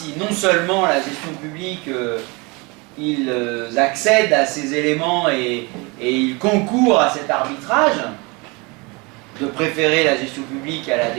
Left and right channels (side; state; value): left; quieter; 27.6 dB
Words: non seulement la gestion publique, ils accèdent à ces éléments et ils concourent à cet arbitrage de préférer la gestion publique à la